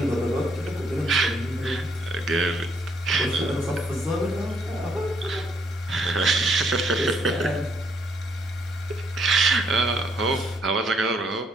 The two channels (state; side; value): normal; both; correlation 0.70